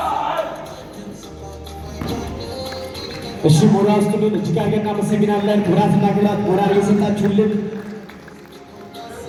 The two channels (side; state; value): both; identical; correlation 1.00